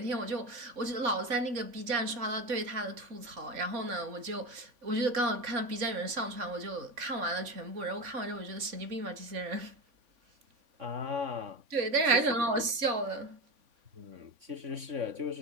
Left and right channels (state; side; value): late; left; 3.5 ms